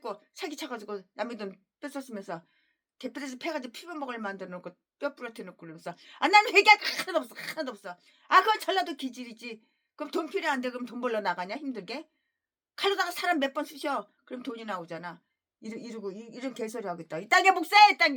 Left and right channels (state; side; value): identical; both; correlation 1.00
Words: 사기쳐가지고 남의 돈 뺏었으면서 개뼈에서 패가지고 피부먹을 만들어 놓고 뼈 부러뜨려 놓고 그러면서 나는 회개할 거 하나도 없어. 그건 전라도 기질이지. 그럼 돈 필요한데 그럼 돈 벌러 나가냐 힘들게? 칼로다가 사람 몇 번 쑤셔. 그럼 돈이 나오잖아. 이런 개소리 하겠다. 이딴 게 목사야 이딴